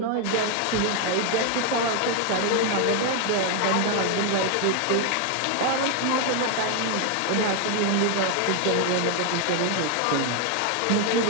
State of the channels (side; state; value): both; different; correlation 0.01